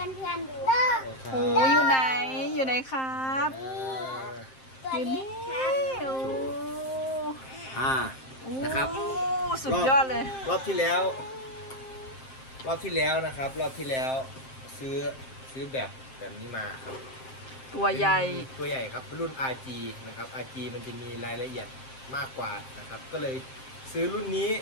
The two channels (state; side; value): late; right; 7.6 ms